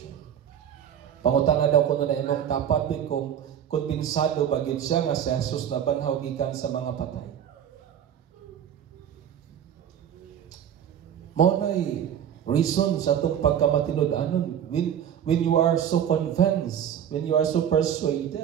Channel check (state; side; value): quieter; left; 9.4 dB